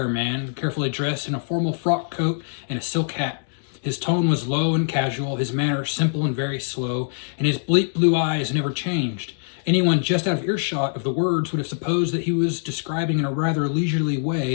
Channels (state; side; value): silent; right; digital silence